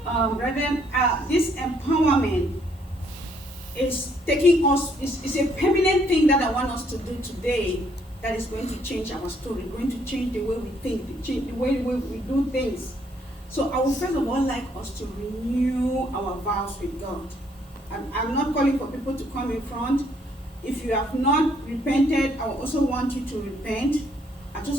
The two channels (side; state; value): both; normal; correlation 0.68